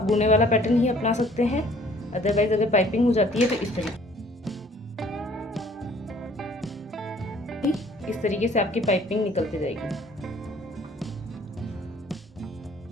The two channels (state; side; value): normal; both; correlation 0.56